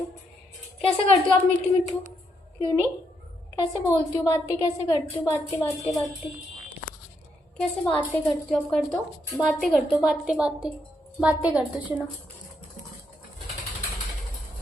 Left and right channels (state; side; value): normal; both; correlation 0.77